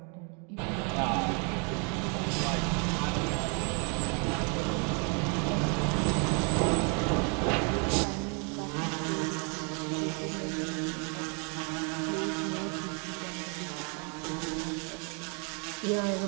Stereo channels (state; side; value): quieter; left; 36.6 dB